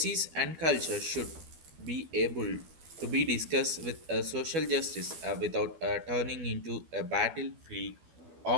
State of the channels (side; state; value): left; late; 12 ms